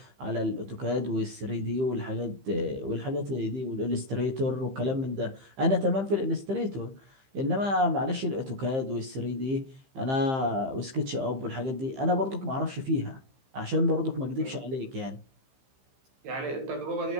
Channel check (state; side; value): late; left; 15 ms